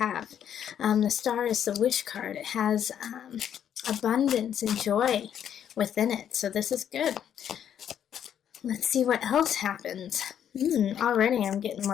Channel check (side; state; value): right; quieter; 9.4 dB